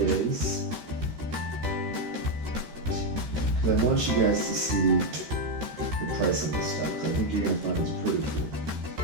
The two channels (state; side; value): late; left; 13 ms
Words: because I want you guys to see the price on this stuff, because I think you're going to find it's pretty cool.